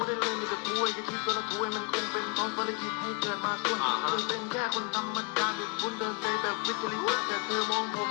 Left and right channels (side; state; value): right; quieter; 32.4 dB